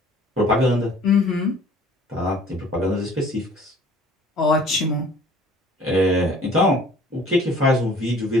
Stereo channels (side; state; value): both; normal; correlation 0.52